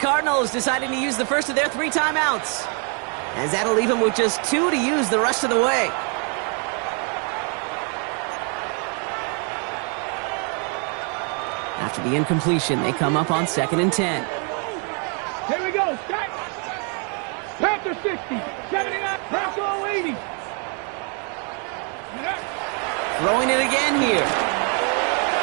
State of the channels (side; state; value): left; quieter; 38.7 dB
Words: deciding to use the first of their 3 timeouts, as that'll leave them with just 2 to use the rest of the way. After the incompletion, they come up on 2nd and 10. Here we go. Start. Panther 60, 79, Bronco 80. Throwing it again here.